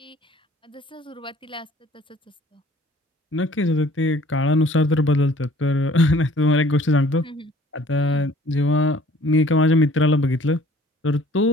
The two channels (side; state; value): both; normal; correlation 0.54